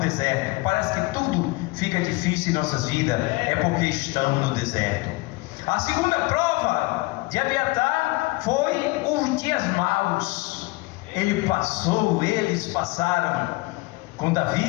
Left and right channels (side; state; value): right; quieter; 23.2 dB